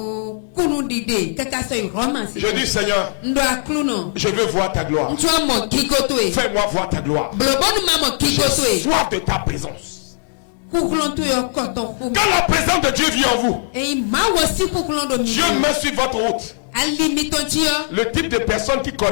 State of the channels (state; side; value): silent; right; digital silence